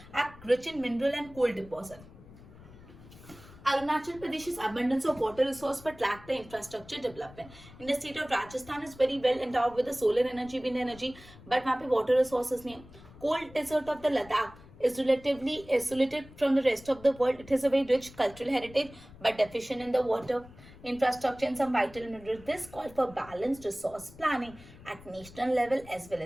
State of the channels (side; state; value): left; noise; rumble, 20 dB below the sound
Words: are rich in mineral and coal deposit. Arunachal Pradesh is abundance of water resource but lack the infrastructure development. In the state of Rajasthan is very well endowed with the solar energy, wind energy, but वहाँ पे water resources नहीं है. Cold desert of the Ladakh is relatively isolated from the rest of the world. It has a very rich cultural heritage but deficient in the water infrastructure and some vital minerals. This calls for balanced resource planning at national level as